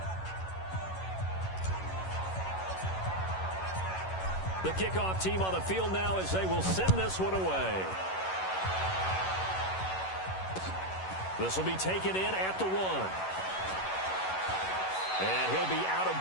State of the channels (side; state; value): right; late; 11 ms